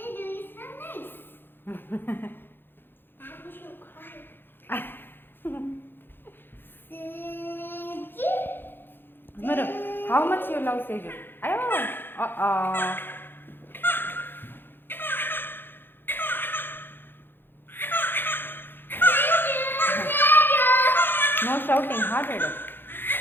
Mero, how much you love Seju? Ayo, no shouting, hearted.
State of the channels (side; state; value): right; late; 0.10 ms